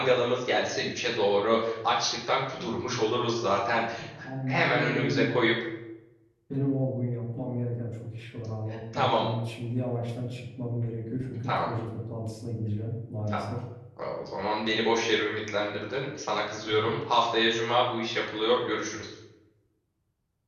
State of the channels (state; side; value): identical; both; correlation 1.00